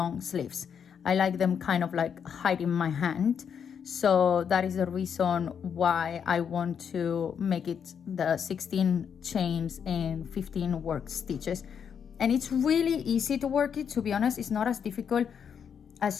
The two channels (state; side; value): quieter; right; 7.4 dB